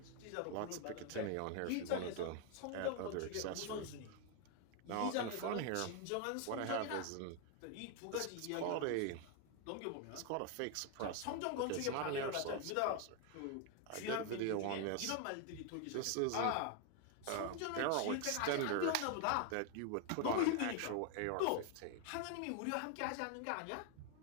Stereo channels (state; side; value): different; both; correlation 0.01